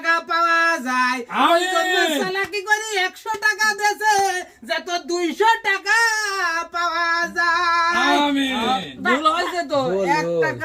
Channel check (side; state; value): both; identical; correlation 1.00